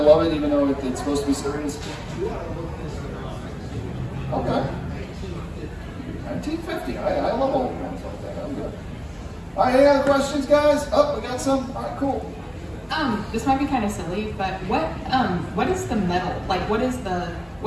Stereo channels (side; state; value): both; identical; correlation 1.00